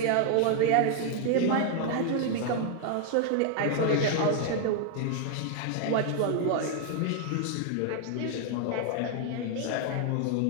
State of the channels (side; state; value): both; different; correlation 0.00